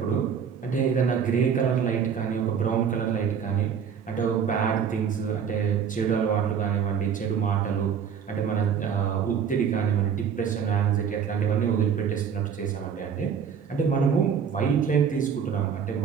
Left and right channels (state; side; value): quieter; left; 7.3 dB